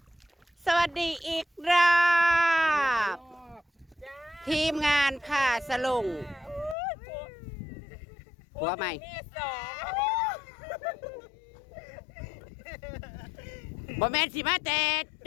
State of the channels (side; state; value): right; drops out; at 6.8 s